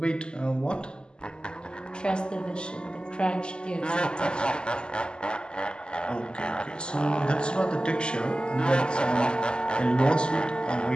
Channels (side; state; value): right; late; 0.048 ms